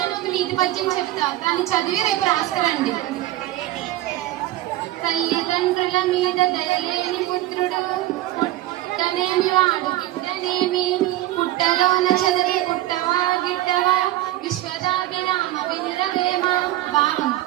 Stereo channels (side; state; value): left; quieter; 15.4 dB